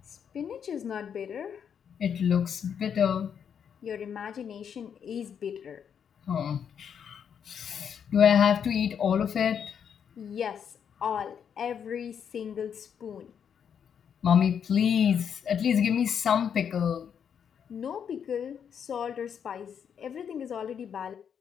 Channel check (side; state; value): right; quieter; 7.8 dB